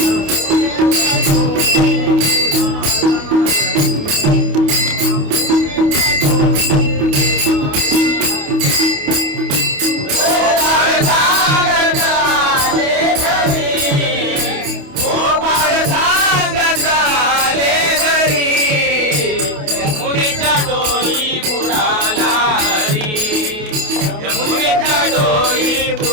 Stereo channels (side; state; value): left; late; 28 ms